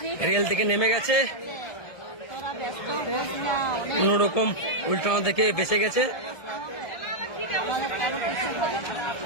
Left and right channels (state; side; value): late; right; 1.7 ms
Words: rail থেকে নেমে গেছে, কোনরকম উল্টানো থেকে বেঁচে গেছে।